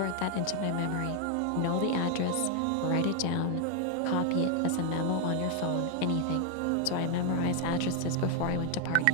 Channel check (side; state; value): both; different; correlation 0.00